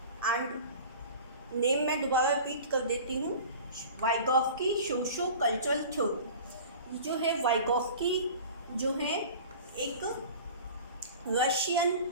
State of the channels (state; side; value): inverted; both; correlation -0.40